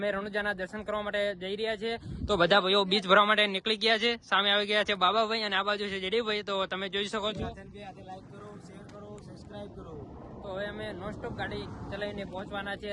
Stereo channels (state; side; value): identical; both; correlation 1.00